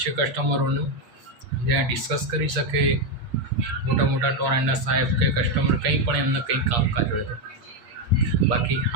છે કસ્ટમરોનું, જ્યાં ડિસ્કસ કરી શકે મોટા ટોરેન્ટના સાહેબ કે કસ્ટમર કંઈ પણ એમને કંઈ કામકાજ હોય તો. બાકી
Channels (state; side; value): late; left; 8.4 ms